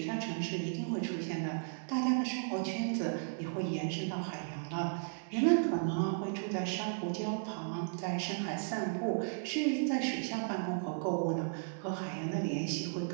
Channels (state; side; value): silent; left; 54 dB below the other